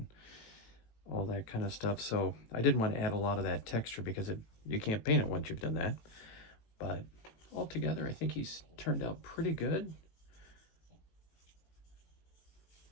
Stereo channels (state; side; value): late; right; 18 ms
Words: all that kind of stuff. So I didn't want to add a lot of that texture because you can't paint it once you've done that. But altogether, I think he's turned out pretty good.